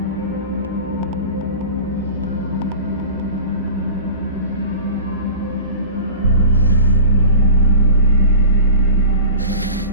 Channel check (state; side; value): inverted; both; correlation -0.36